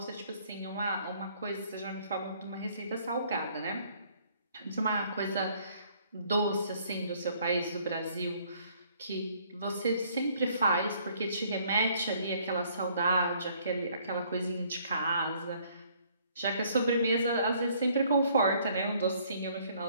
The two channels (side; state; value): both; inverted; correlation -0.62